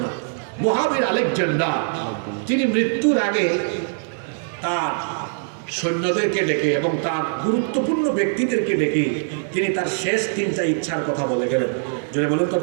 মহাবীর আলেকজান্ডার তিনি মৃত্যুর আগে তার সৈন্যদেরকে ডেকে এবং তার গুরুত্বপূর্ণ ব্যক্তিদেরকে ডেকে তিনি তার শেষ তিনটা ইচ্ছার কথা বলে গেলেন। জোরে বলেন তো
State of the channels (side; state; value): left; silent; digital silence